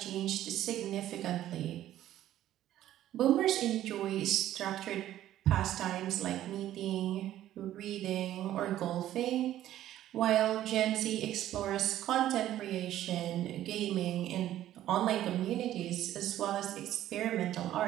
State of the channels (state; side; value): quieter; left; 12.9 dB